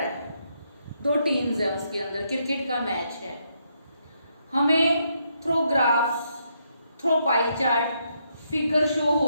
दो टीम्स है उसके अंदर, क्रिकेट का मैच है, हमें through graphs, through pie chart, figure show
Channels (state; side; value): inverted; both; correlation -0.77